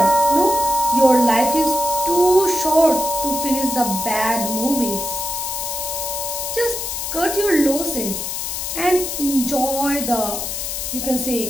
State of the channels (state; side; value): noise; left; hiss, 4 dB below the sound